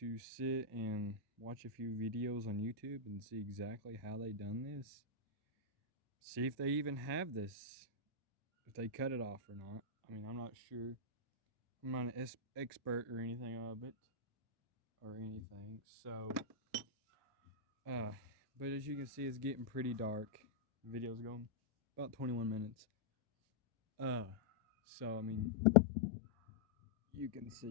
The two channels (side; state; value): right; quieter; 3.4 dB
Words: sit and watch a few videos on YouTube and see exactly how they done this. See if they even have this, if they cut it off or not. I mean, I'm not sure. I'm not an expert or anything of it or anything. So, but as you can see, it's getting pretty dark. The video's going about 21 minutes. So I mean, you can